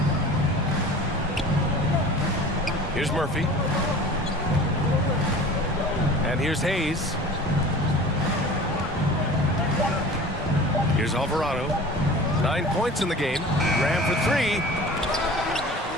Here's Murphy. And here's Hayes. Here's Alvarado. 9 points in the game. Ram for 3.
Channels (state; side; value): normal; both; correlation 0.40